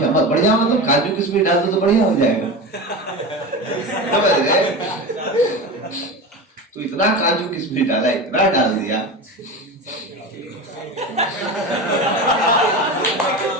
बढ़िया मतलब काजू किशमिश डाल दो तो बढ़िया हो जाएगा, समझ गए? तो इतना काजू किशमिश डाला, इतना डाल दिया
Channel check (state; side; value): normal; both; correlation 0.26